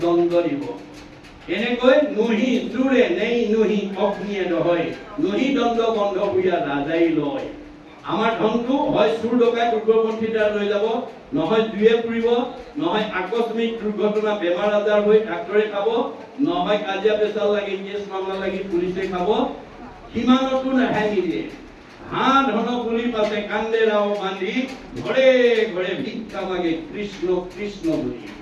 দণ্ড দিব। এনেকৈ নহি চোৰে নেই নহি অগ্নিয়ে নহয়, নহি দণ্ড বন্ধ বুঢ়া ৰাজাই লয়। আমাৰ ধনটো হয় চোৰ ডকাইত উগ্ৰপন্থী দ্বাৰা লৈ যাব, নহয় জুয়ে পুৰিব, নহয় আকস্মিক দুৰ্ঘটনা বেমাৰ আজাৰ হৈ ডাক্তৰে খাব, নহয় কাজিয়া পেচাল লাগি কেছ মামলা লাগি পুলিচে খাব। সিমানতো ৰেহাই নিদিয়ে। হাঁ ধন পুলি পাছে কান্দে ৰাও বান্ধি, ঘৰে ঘৰে ভিক্ষা মাগে কৃষ্ণ কৃষ্ণ বুলি।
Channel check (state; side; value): identical; both; correlation 1.00